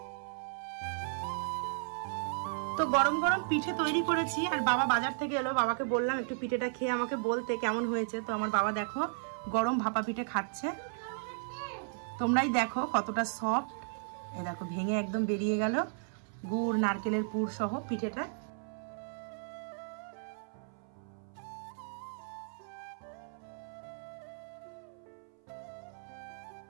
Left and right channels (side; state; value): left; silent; 55 dB below the other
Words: তো গরম গরম পিঠে তৈরি করেছি, আর বাবা বাজার থেকে এলো। বাবাকে বললাম একটু পিঠেটা খেয়ে আমাকে বলতে কেমন হয়েছে। তো আমার বাবা দেখো গরম ভাপা পিঠে খাচ্ছে। তোমরাই দেখো কতটা সফট, এ দেখো ভেঙে একদম বেরিয়ে গেল গুড় নারকেলের পুর সহ পিঠেটা।